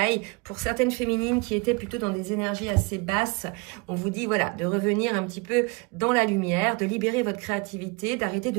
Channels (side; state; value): left; quieter; 28.4 dB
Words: pour certaines féminines qui étaient plutôt dans des énergies assez basses. On vous dit, voilà, de revenir un petit peu dans la lumière, de libérer votre créativité, d'arrêter de